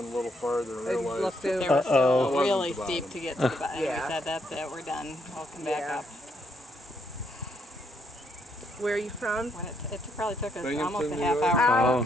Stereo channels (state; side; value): normal; both; correlation 0.74